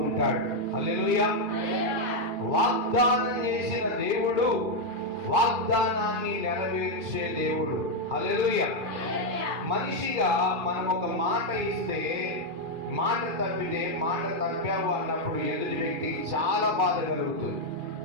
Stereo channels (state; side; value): late; left; 2.4 ms